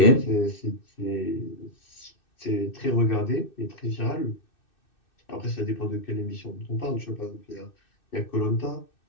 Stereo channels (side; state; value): right; late; 2.6 ms